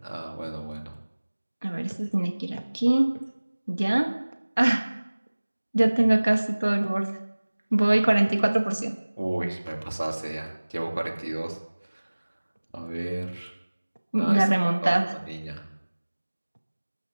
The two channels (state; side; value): inverted; both; correlation -1.00